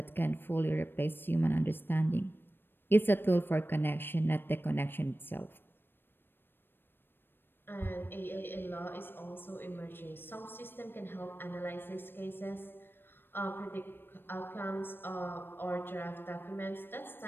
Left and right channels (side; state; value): right; late; 0.099 ms